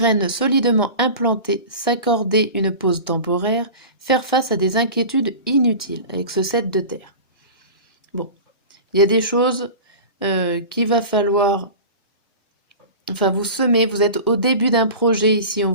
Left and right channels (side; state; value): both; inverted; correlation -0.34